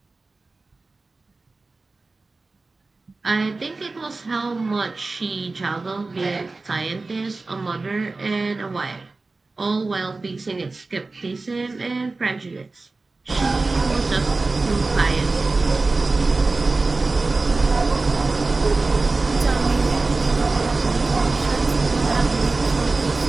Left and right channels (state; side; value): quieter; left; 3.6 dB